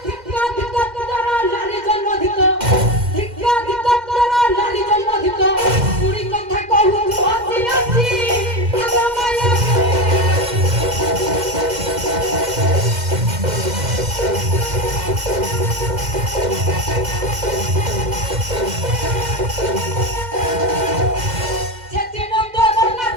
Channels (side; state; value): left; late; 2.1 ms